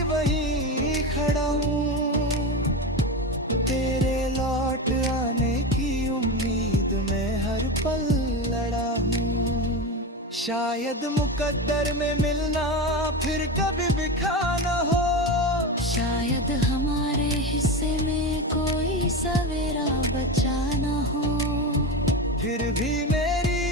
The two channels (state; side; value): normal; both; correlation 0.20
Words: वहीं खड़ा हूँ, तेरे लौट आने की उम्मीद में हर पल लड़ा हूँ। शायद मुकद्दर में मिलना फिर कभी बिखा न हो, शायद हमारे हिस्से में कोई सवेरा बचा न हो। फिर भी